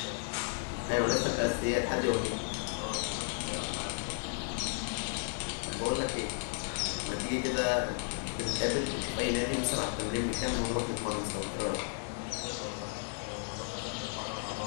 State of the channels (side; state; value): right; silent; 55 dB below the other